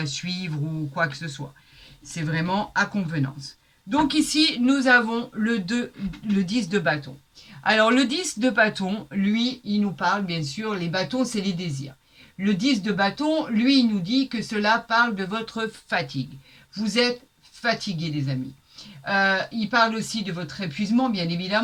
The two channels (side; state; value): both; identical; correlation 1.00